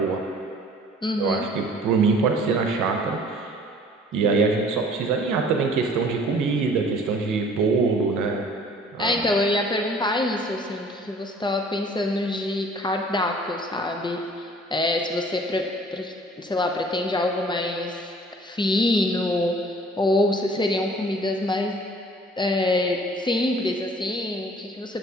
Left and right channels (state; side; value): normal; both; correlation 0.52